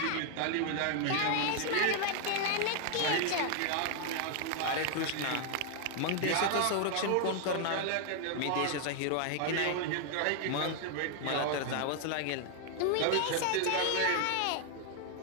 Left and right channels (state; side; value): different; both; correlation 0.00